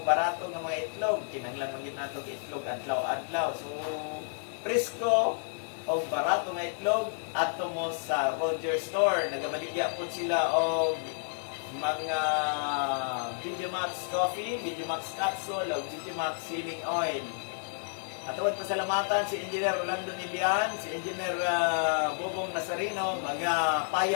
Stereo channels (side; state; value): right; silent; digital silence